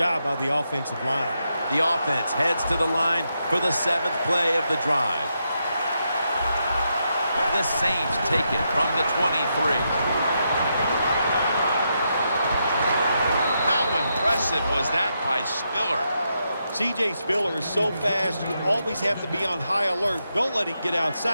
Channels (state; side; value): inverted; both; correlation -0.83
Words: by the offensive line. The offense heads to the line for the 7th play of the drive. The Saints take it from the 23. How impressive was that by Spiller? C.J. Spiller is so fast, you always have to be on high alert. Don't let him get